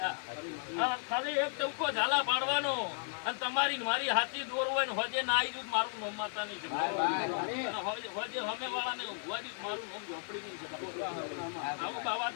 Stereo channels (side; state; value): right; silent; 55 dB below the other